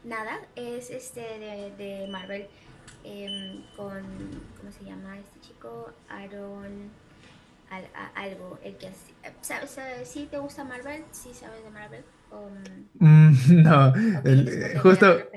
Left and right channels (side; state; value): both; identical; correlation 1.00